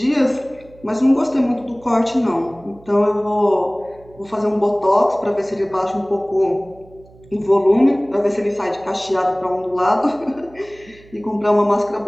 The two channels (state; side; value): noise; right; hum, 25 dB below the sound